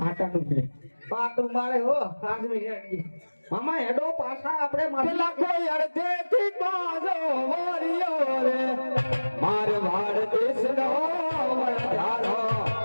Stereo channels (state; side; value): inverted; both; correlation -1.00